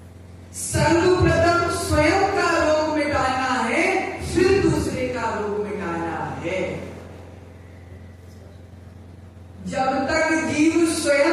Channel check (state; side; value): identical; both; correlation 1.00